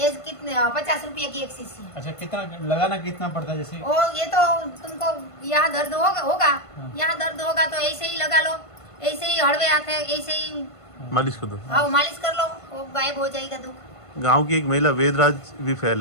कितने 50 रुपये की एक शीशी है। अच्छा, कितना लगाना कितना पड़ता है? जैसे ओ, ये तो तुमको यहाँ दर्द होगा, यहाँ दर्द होगा तो ऐसे ही लगा लो, ऐसे ही हड़वे हाथ है, ऐसे ही मालिश कर दो। हाँ, मालिश कर लो, वो गायब हो जाएगा दुख। गांव की एक महिला वेदराज भी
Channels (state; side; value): late; right; 1.5 ms